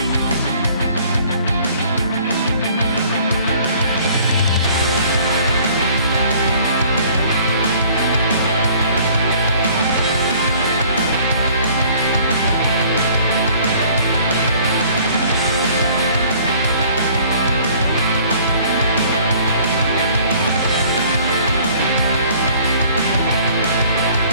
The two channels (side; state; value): both; inverted; correlation -0.54